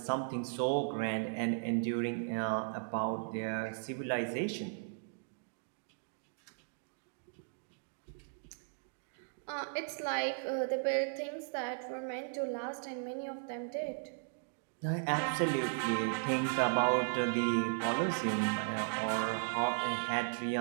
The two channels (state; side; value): silent; left; digital silence